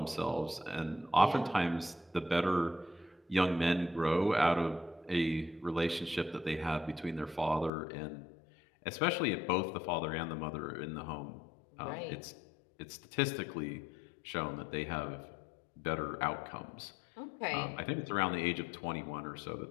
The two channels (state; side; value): drops out; right; at 7.7 s